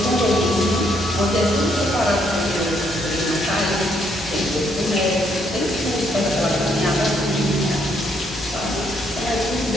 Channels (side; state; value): both; normal; correlation 0.72